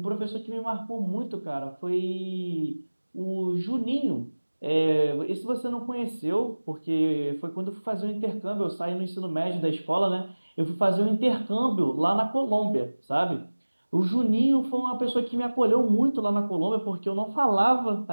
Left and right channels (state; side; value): inverted; both; correlation -1.00